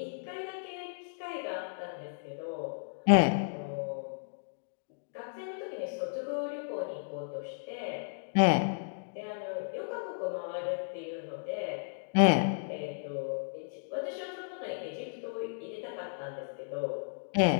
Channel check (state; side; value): silent; right; digital silence